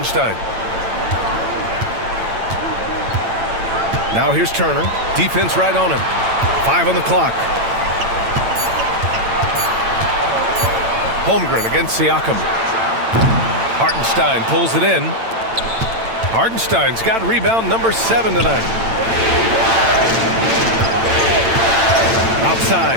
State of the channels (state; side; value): late; left; 8.9 ms